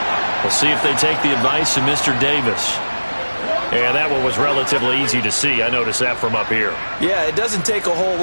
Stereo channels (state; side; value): inverted; both; correlation -1.00